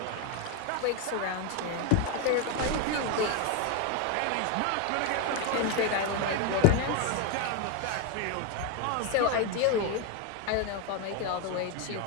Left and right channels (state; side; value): different; both; correlation 0.02